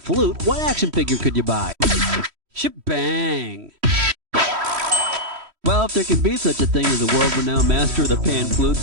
what action figure could you buy? Shebang. Well, if there can be such a thing as a world-renowned Master of the Pan Flute,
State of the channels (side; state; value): left; late; 3.1 ms